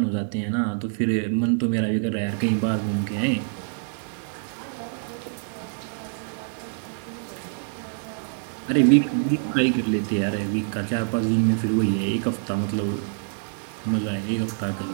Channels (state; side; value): silent; left; digital silence